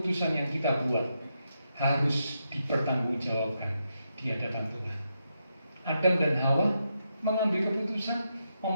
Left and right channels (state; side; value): inverted; both; correlation -0.83